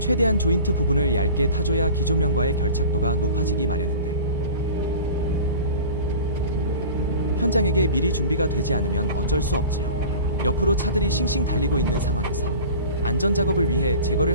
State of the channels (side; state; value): both; inverted; correlation -0.39